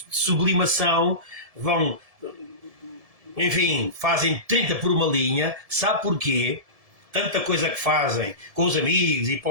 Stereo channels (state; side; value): late; left; 1.7 ms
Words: de sublimação vão, enfim, fazem 30 por uma linha. Sabe porquê? Tanta coisa que fazem com os amigos e